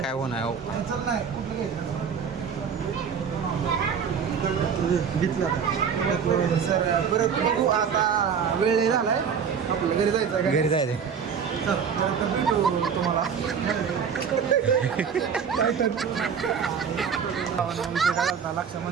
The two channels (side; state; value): left; quieter; 6.9 dB